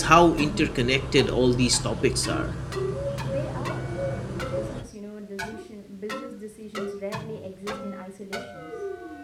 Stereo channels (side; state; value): both; identical; correlation 1.00